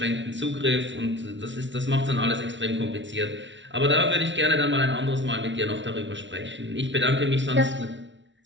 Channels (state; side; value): late; left; 0.54 ms